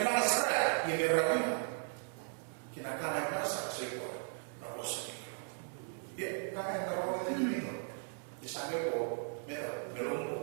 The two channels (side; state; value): left; silent; 53 dB below the other